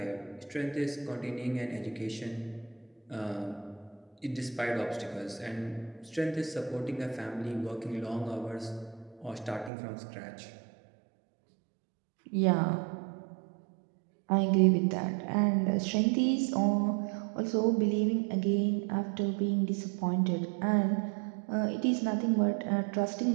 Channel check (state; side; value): drops out; left; at 9.7 s